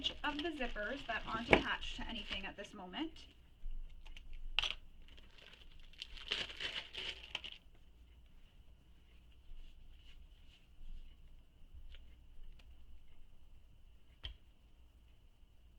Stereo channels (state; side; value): identical; both; correlation 1.00